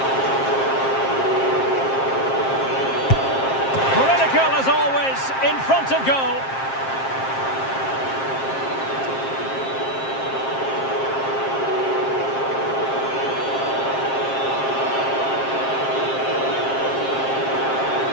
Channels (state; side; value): late; right; 7.5 ms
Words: Critical as always, in front of goal.